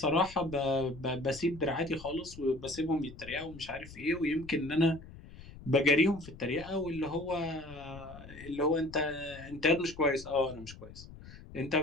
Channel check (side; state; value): left; noise; rumble, 16 dB below the sound